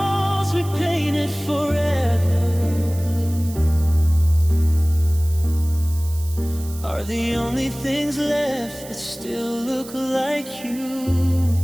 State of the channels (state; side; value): noise; right; hiss, 17 dB below the sound